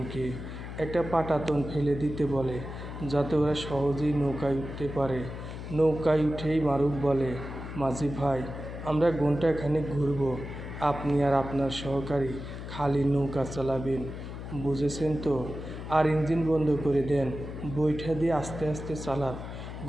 একটা পাটাতন ফেলে দিতে বলে, যাতে ওরা সহজেই নৌকায় উঠতে পারে। নৌকায় উঠেই মারুফ বলে, মাঝি ভাই, আমরা ঘণ্টাখানেক ঘুরব। আপনি আর আপনার সহকারী খালি নৌকা চালাবেন, বুঝেছেন তো? আর ইঞ্জিন বন্ধ করে দেন, বৈঠা দিয়ে আস্তে আস্তে চালান।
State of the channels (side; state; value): left; noise; hum, 9 dB below the sound